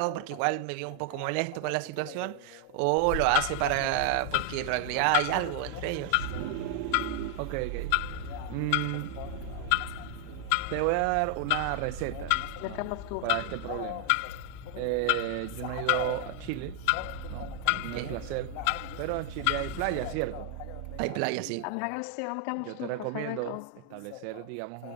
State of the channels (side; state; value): both; different; correlation 0.00